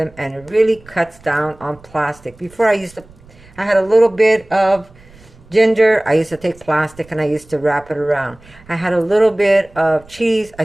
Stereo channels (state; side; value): noise; right; rumble, 25 dB below the sound